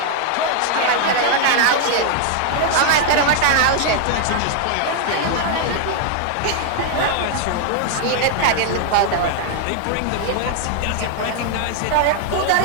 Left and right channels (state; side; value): different; both; correlation 0.00